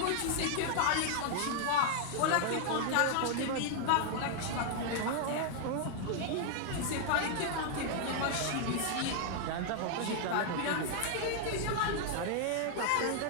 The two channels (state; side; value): different; both; correlation 0.00